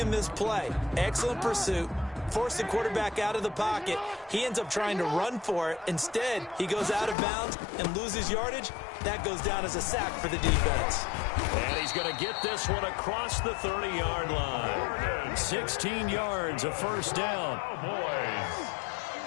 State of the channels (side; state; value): right; drops out; at 7.2 s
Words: this play. Excellent pursuit. Force the quarterback out of the pocket. He ends up trying to run for it. Instead, he goes out of bounds and loses yardage. That goes down as a sack for the defense. And he's going to get this one across the 30-yard line. 16 yards, a first down.